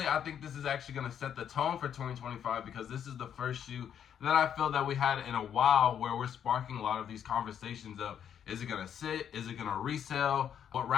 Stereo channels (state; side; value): quieter; right; 8.9 dB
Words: I think this is actually going to set the tone for 2025 because this is the first shoe that I feel that we had in a while where we're sparking a lot of these conversations of, is it going to sit, is it going to resell, what